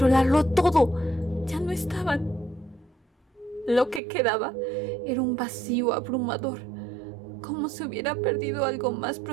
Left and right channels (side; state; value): left; drops out; at 4.0 s